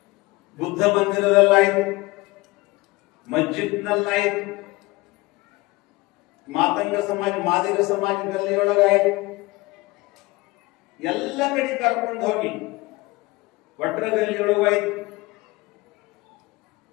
ಬುದ್ಧ ಮಂದಿರದಲ್ಲಾಯ್ತು, ಮಸ್ಜಿದ್ನಲ್ಲಾಯ್ತು, ಮಾತಂಗ ಸಮಾಜ, ಮಾದಿಗ ಸಮಾಜ ಗಲ್ಲಿಯೊಳಗಾಯ್ತು. ಎಲ್ಲ ಕಡೆ ಕರ್ಕೊಂಡು ಹೋಗಿ ವಟ್ರ ಗಲ್ಲಿಯೊಳಗಾಯ್ತು.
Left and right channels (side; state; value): right; quieter; 21.8 dB